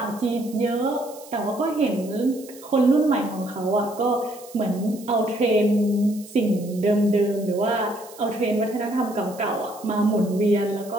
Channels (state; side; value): noise; right; hiss, 20 dB below the sound